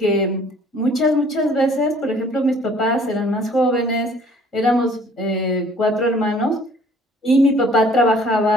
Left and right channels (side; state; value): both; normal; correlation 0.56